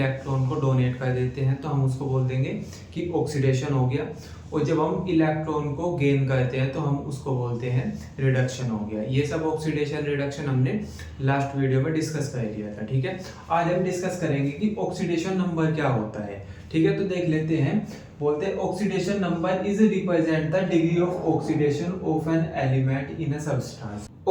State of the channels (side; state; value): both; identical; correlation 1.00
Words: को डोनेट कर देते हैं तो हम उसको बोल देंगे कि ऑक्सीडेशन हो गया, और जब हम इलेक्ट्रॉन को गेन करते हैं तो हम उसको बोलते हैं रिडक्शन हो गया। ये सब ऑक्सीडेशन रिडक्शन हमने लास्ट वीडियो में डिस्कस कर लिया था। ठीक है, आज हम डिस्कस करेंगे कि ऑक्सीडेशन नंबर क्या होता है। ठीक है, तो देख लेते हैं। बोलते हैं oxidation number is represent the degree of oxidation of an element in a substance.